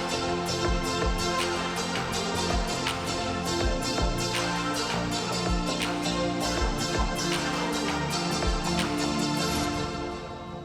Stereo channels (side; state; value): both; identical; correlation 1.00